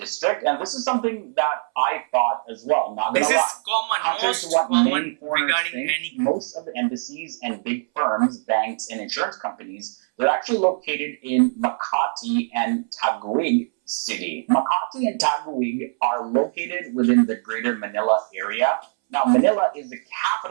and this is something that I thought as well. Not gonna lie. This is common, most common regarding any. Most of the embassies and big firms, banks, and insurance companies They're actually located in Makati and Taguig City. Makati and Taguig are located within the greater Manila area. Now, Manila is the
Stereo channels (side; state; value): left; silent; 63 dB below the other